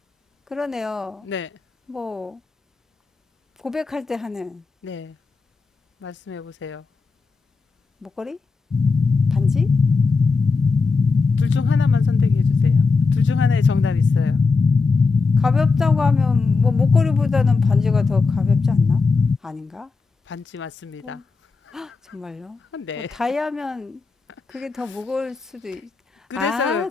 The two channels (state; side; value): quieter; right; 4.4 dB